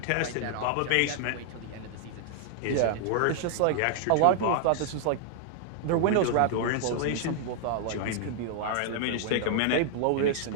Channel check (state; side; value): different; both; correlation 0.00